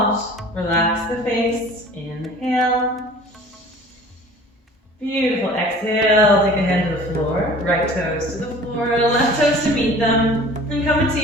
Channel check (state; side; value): normal; both; correlation 0.45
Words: Relax the face. Inhale. Beautiful. Exhale. Take a hand to the floor. Right toes to the floor. Left toes to meet them. And come into